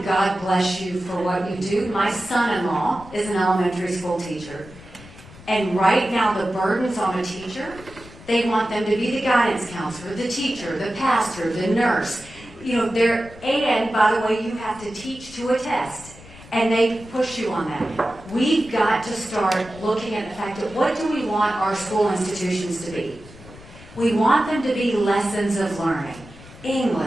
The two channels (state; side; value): noise; left; rumble, 19 dB below the sound